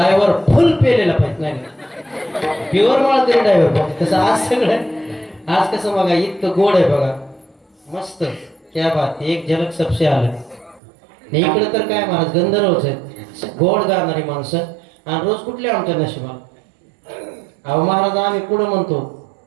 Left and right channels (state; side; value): drops out; left; at 10.8 s